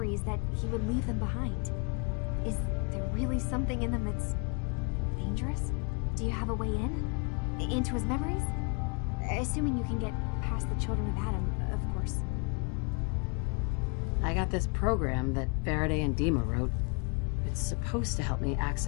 that he would leave them behind? Is there really something in them that's dangerous? Do you have a way in? Into his memories? Assuming you can get past the children of Adam, of course. I got this program that Faraday and Dima wrote. It's supposed to help me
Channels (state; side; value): quieter; right; 34.2 dB